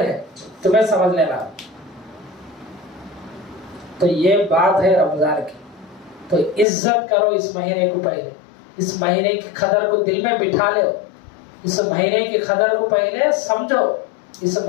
है, तुम्हें समझ लेना। तो ये बात है रमजान की। तो इज्जत करो इस महीने को, पहले इस महीने की कदर को दिल में बिठा लो, इस महीने की कदर को पहले समझो, इस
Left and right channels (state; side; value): drops out; right; at 6.7 s